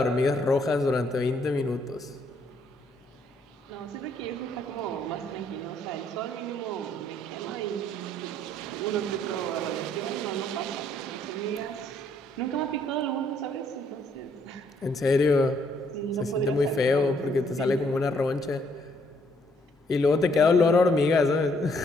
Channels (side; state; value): both; normal; correlation 0.68